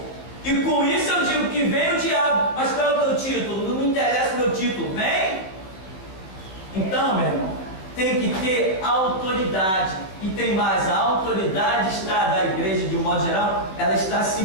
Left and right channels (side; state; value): right; late; 16 ms